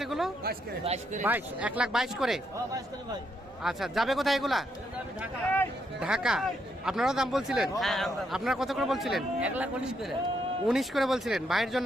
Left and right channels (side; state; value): both; normal; correlation 0.77